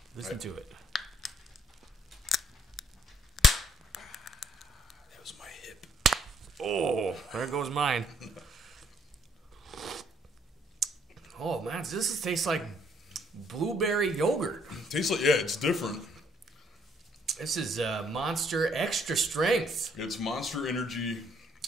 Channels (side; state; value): both; normal; correlation 0.66